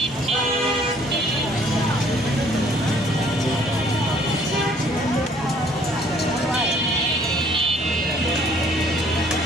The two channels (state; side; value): normal; both; correlation 0.60